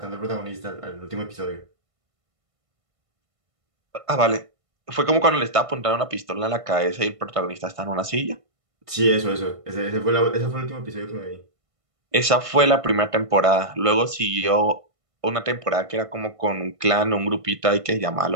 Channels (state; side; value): late; left; 1.5 ms